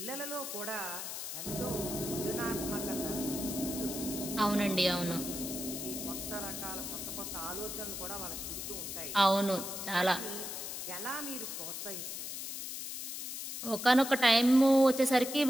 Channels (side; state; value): left; noise; hiss, 6 dB below the sound